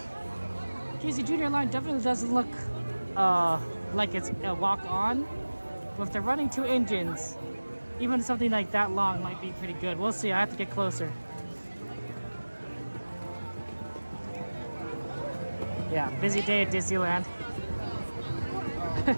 Casey Jr. line definitely doesn't look like it's a walk-on. But if they're running 2 engines, even something like that long might be pretty good. We'll see. I have to get closer. Yeah, busy day at Disneyland.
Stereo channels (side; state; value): both; inverted; correlation -1.00